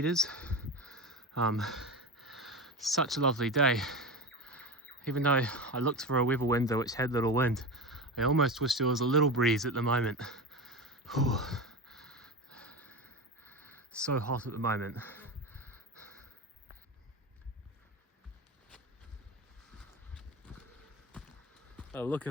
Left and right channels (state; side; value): normal; both; correlation 0.24